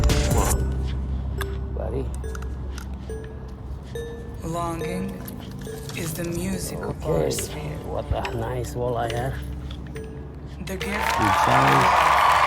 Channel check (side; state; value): both; identical; correlation 1.00